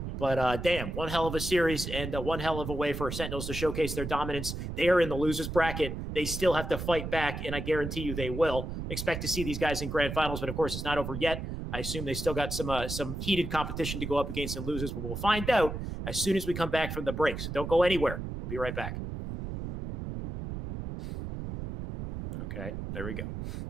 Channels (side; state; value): right; noise; rumble, 6 dB below the sound